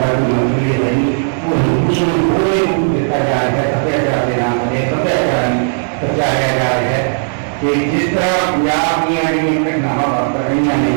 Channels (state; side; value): silent; left; digital silence